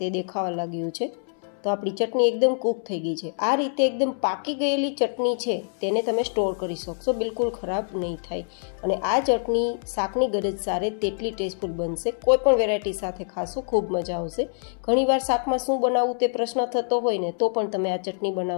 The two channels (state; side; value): silent; right; 61 dB below the other